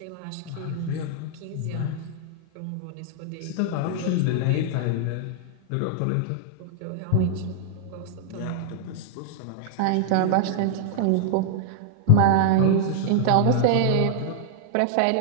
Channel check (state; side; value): different; both; correlation -0.01